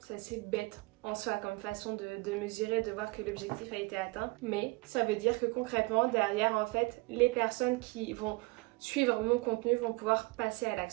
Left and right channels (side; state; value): left; quieter; 25.5 dB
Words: C'est assez bête en soi comme façon de mesurer, de voir que l'objectif a été atteint, mais ça veut dire que concrètement derrière en fait les personnes qui vont suivre mon contenu vont pouvoir passer à